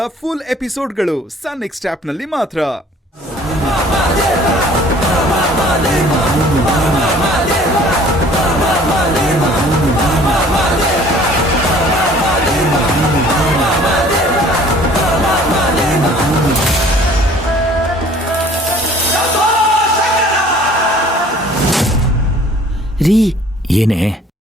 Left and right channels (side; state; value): both; normal; correlation 0.52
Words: ಫುಲ್ ಎಪಿಸೋಡ್ಗಳು ಸನ್ ನೆಕ್ಸ್ಟ್ ಆಪ್ನಲ್ಲಿ ಮಾತ್ರ. ರೀ, ಏನೇ?